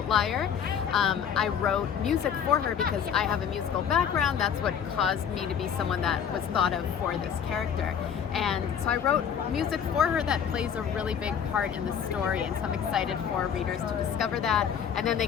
I wrote music for her because I have a musical background. That's what caused me to be someone that was thought of for this character. And so I wrote music for her that plays a really big part in the story, and so I'm excited for readers to discover that, and then they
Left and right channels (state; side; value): quieter; right; 8.0 dB